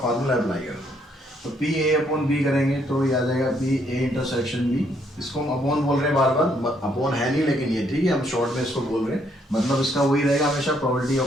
अप्लाई करना है। तो पी ए अपॉन बी करेंगे तो ये आ जाएगा पी ए इंटरसेक्शन बी, इसको हम अपॉन बोल रहे हैं बार बार, अपॉन है नहीं लेकिन ये ठीक है, हम शॉर्ट में इसको बोल रहे हैं, मतलब इसका वही रहेगा हमेशा, probability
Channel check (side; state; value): both; normal; correlation 0.70